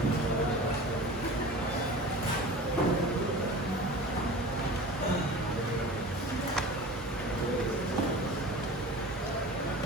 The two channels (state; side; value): normal; both; correlation 0.36